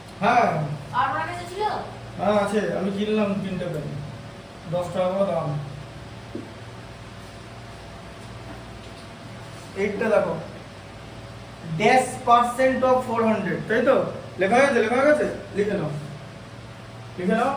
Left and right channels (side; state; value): both; identical; correlation 1.00